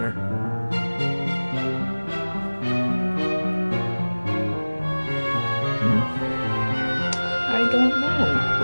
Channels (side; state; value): both; inverted; correlation -1.00